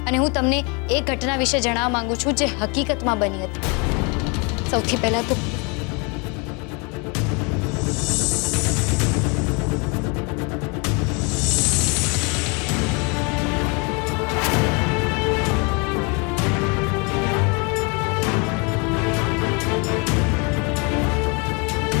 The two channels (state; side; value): quieter; right; 31.9 dB